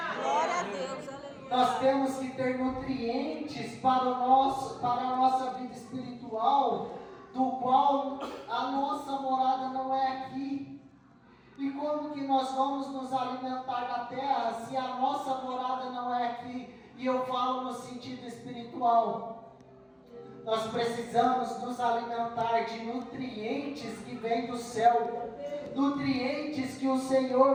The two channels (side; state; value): both; identical; correlation 1.00